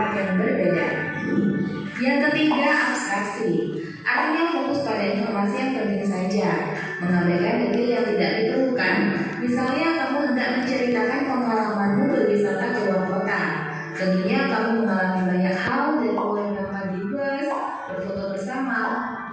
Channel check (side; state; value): both; identical; correlation 1.00